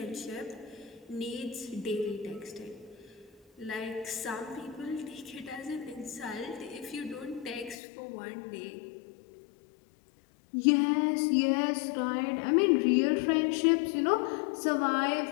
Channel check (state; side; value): drops out; right; at 7.8 s